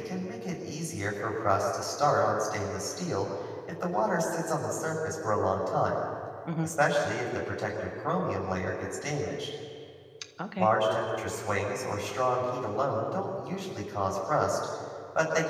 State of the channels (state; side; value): identical; both; correlation 1.00